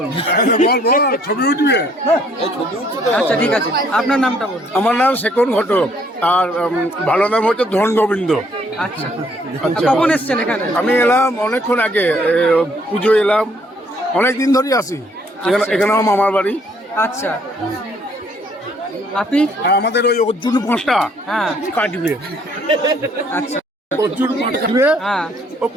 না। বল বল, ছবি উঠবে। আচ্ছা ঠিক আছে, আপনার নামটা বলুন। আমার নাম শেখর ঘটক, আর ভালো নাম হচ্ছে ধন গোবিন্দ। আচ্ছা আচ্ছা। কখন এসছেন এখানে? আমি এলাম অনেকক্ষণ আগে, পুজো এলাম, অনেক দিন ধরেই আসি এখানে। এখানে আমার মামার বাড়ি। আচ্ছা আপনি? আর আমাদের ওই অর্জুন পাঁচটা হ্যাঁ কাটবে, আচ্ছা অর্জুন পাঁচ কাটবে। হ্যাঁ ও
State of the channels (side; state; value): both; normal; correlation 0.65